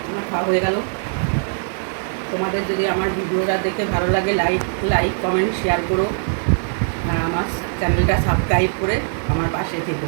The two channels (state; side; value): silent; left; 62 dB below the other